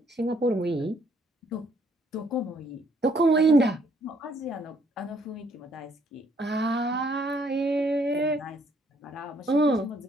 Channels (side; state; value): both; normal; correlation 0.67